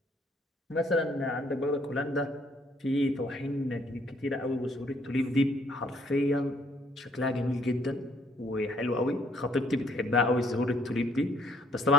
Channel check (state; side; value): normal; both; correlation 0.66